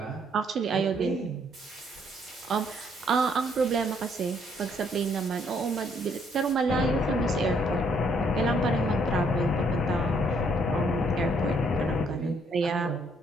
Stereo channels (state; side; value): normal; both; correlation 0.68